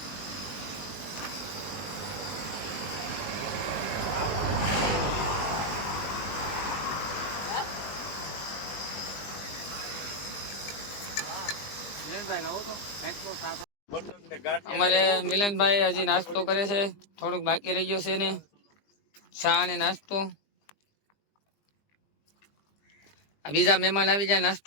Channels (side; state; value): right; late; 20 ms